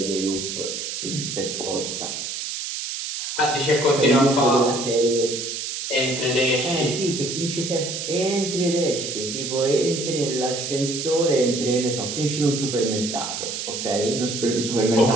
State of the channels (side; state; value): right; noise; hiss, 5 dB below the sound